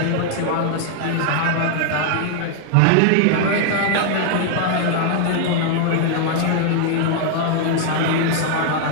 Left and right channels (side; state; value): both; different; correlation 0.00